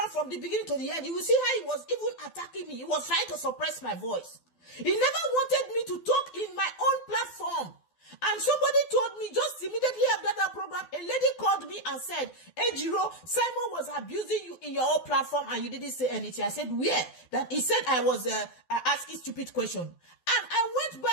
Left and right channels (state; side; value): late; right; 12 ms